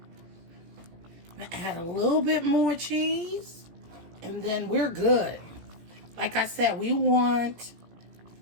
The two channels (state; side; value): late; left; 17 ms